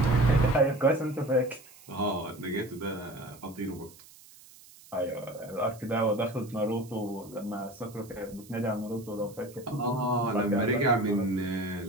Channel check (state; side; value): noise; right; hiss, 22 dB below the sound